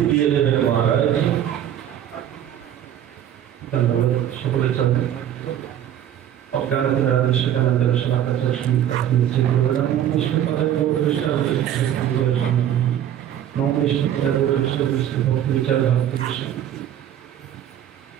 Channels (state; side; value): quieter; left; 10.7 dB